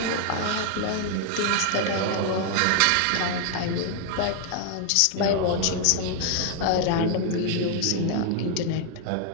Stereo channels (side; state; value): both; different; correlation 0.00